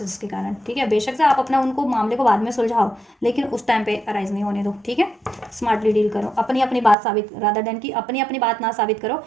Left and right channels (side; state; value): left; drops out; at 7.0 s